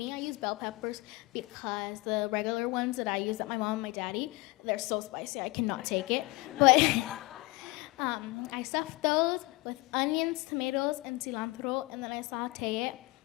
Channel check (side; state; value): right; quieter; 22.8 dB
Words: I use bell peppers because the regular ones that I use at my mom and my daddy, they're so spicy, I cannot take it. But I stuff those with onions, tomatoes, and cilantro, and then I saute it.